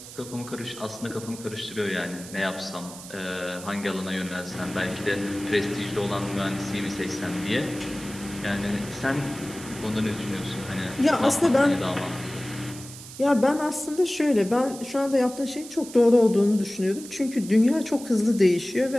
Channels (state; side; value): noise; right; hiss, 15 dB below the sound